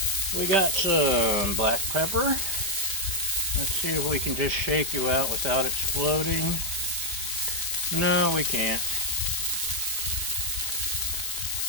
We got some black pepper. Let's see if we can just shake you out without exploding. No, we can't.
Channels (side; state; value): left; late; 4.8 ms